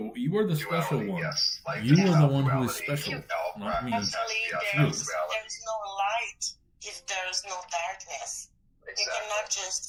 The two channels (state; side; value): identical; both; correlation 1.00